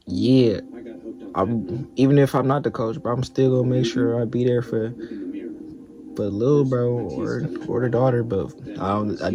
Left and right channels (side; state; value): both; identical; correlation 1.00